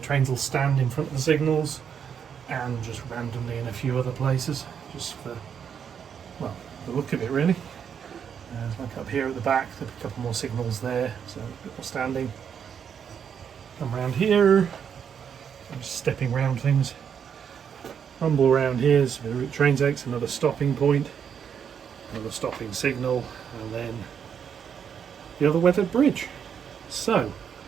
will stand in front of the signals, and just randomly in a few other places, just for, well, the look of it really. Like up here at the back, there'll be a couple more signals there, so a bit more standing. Come around here, I'm just stepping around things. Rumble around here, so the route train takes another stopping point, another stopping signal, and then the other weathered bridge. So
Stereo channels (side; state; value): left; quieter; 7.7 dB